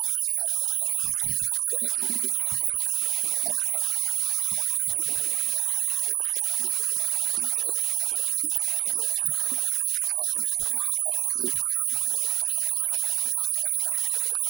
ምናልባት ኣብ ብዙሕ እዋን ኣካታሓ ክኸውን ይኽእል ዝርእስቲ ግን ኣነ ከም ማይክ ገንዘብ ደይኮንኩ ትምህርቲ የድመርጽ ምክንያቱ ትምህርቲ ከባቢኻ ምፍላጥ እዩ ከባቢኻ ድሕር ፈሊጥካ ኸ እቲ ገንዘብ ከባቢኻ ንኽትነብር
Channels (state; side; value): quieter; left; 13.6 dB